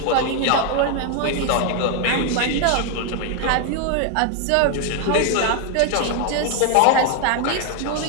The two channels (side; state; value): both; different; correlation 0.00